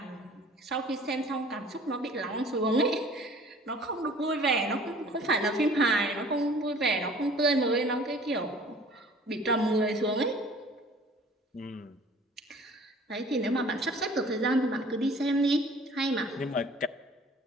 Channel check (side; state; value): both; normal; correlation 0.49